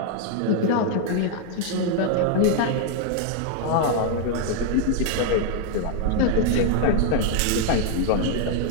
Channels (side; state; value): both; different; correlation 0.00